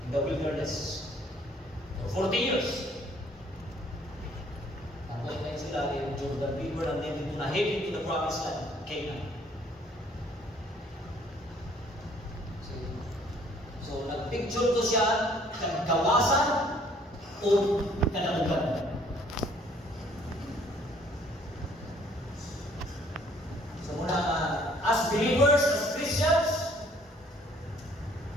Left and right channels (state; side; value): normal; both; correlation 0.60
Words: in the wilderness, for 40 years, naglayin sila in Jordan River and then dito na heading to the promised land, Canaan. So, nagpicture to siya ng kawasan o kadaugan. So, muna, as believers, as Christians,